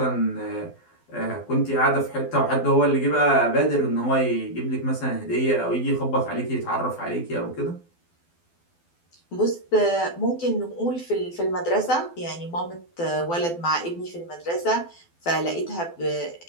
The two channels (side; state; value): right; late; 12 ms